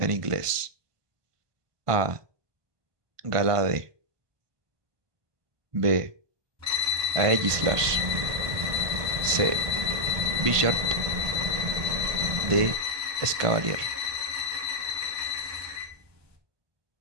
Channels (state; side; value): late; left; 1.5 ms